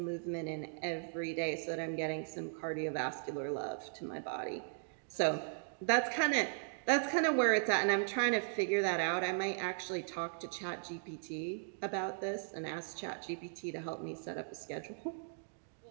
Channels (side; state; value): left; silent; digital silence